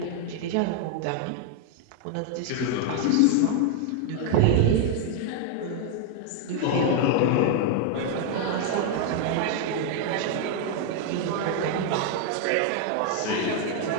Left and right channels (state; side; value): different; both; correlation 0.00